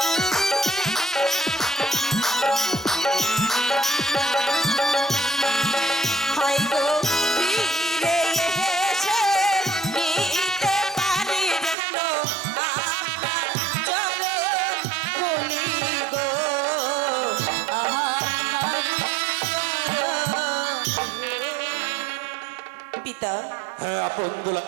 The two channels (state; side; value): drops out; left; at 11.8 s